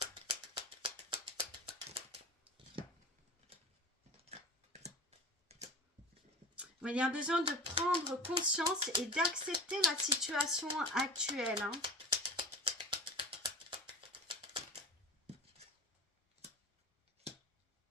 Il y a besoin de prendre conscience et d'accepter la situation actuelle.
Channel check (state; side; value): normal; both; correlation 0.33